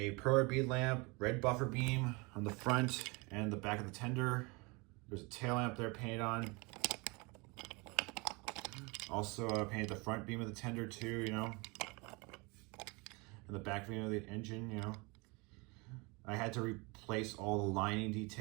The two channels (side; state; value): left; quieter; 27.6 dB